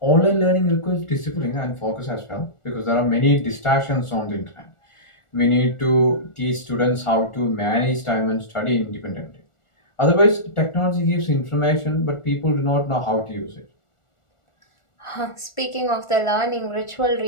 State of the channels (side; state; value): right; late; 1.4 ms